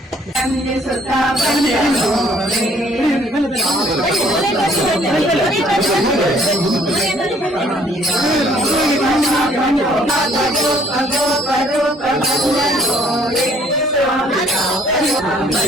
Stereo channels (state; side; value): normal; both; correlation 0.61